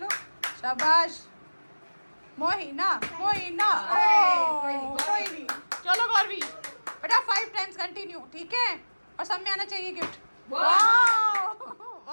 शाबाश मोहिना मोहिना। ओह कोई नहीं, चलो गौरवी बेटा 5 टाइम्स कंटिन्यू, ठीक है, और सब में आना चाहिए गिफ्ट। वाह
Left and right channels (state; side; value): inverted; both; correlation -1.00